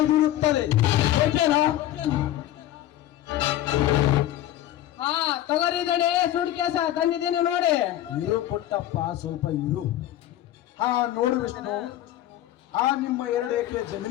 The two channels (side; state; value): right; quieter; 13.2 dB